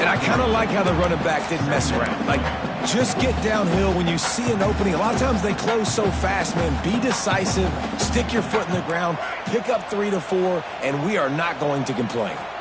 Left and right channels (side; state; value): both; identical; correlation 1.00